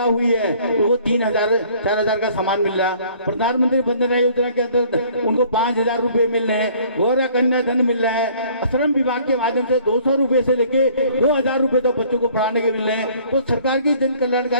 हुई है तो वो 3,000 4,000 का सामान मिल रहा। प्रधानमंत्री वंदना योजना के अंदर उनको 5,000 रुपए मिल रहे हैं। गौरव कन्या धन मिल रहा है। श्रम विभाग के माध्यम से 200 रुपए से लेके 2,000 रुपए तक बच्चों को पढ़ाने के मिल रहे हैं। तो सरकार की जन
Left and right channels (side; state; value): both; inverted; correlation -0.56